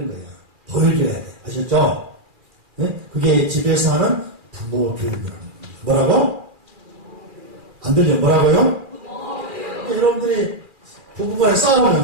거야. 보여줘야 돼. 아셨죠? 네? 그게 집에서 하는 부모 교육이라는 겁니다. 뭐라고? 안 들려? 뭐라고요? 그러니까 여러분들이 부부간에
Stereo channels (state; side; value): late; left; 2.4 ms